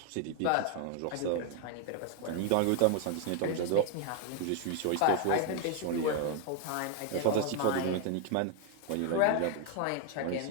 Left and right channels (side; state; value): both; different; correlation 0.01